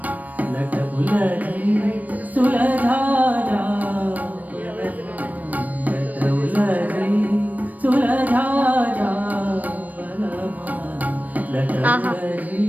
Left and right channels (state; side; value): late; left; 0.076 ms